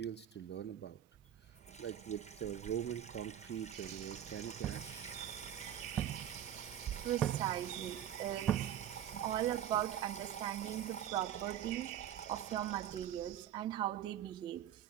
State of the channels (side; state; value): left; quieter; 10.8 dB